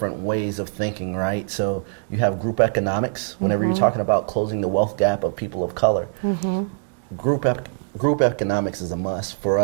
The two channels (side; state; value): left; silent; 64 dB below the other